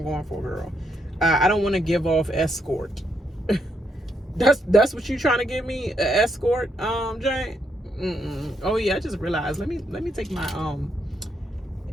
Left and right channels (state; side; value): normal; both; correlation 0.77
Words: going for, girl. I don't want to give off escort. That's what you trying to give me, an escort, Jane? Oh yeah, I just realized. Let me take my